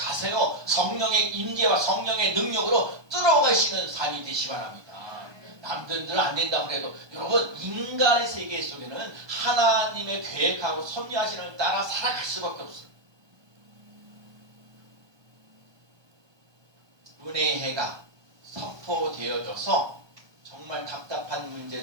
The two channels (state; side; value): late; left; 1.2 ms